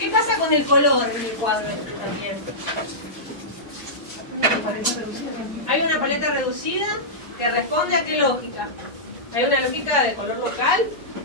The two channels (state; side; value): normal; both; correlation -0.14